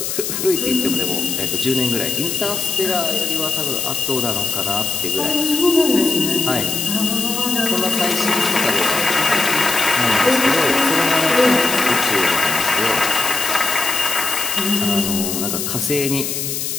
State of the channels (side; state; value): left; noise; hiss, 3 dB below the sound